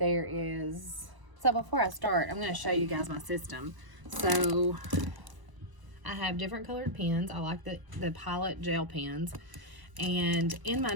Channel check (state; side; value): late; left; 1.0 ms